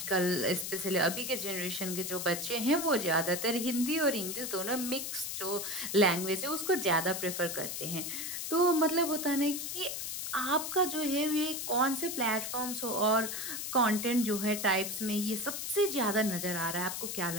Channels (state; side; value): noise; left; hiss, 4 dB below the sound